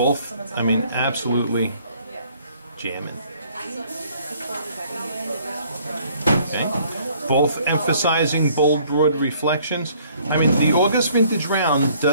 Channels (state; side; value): inverted; both; correlation -0.60